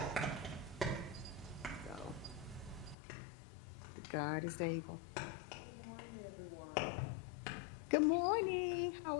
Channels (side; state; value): right; drops out; at 3.0 s